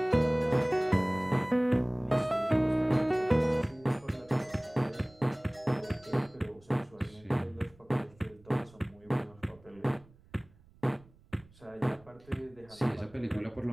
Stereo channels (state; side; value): noise; right; rumble, 27 dB below the sound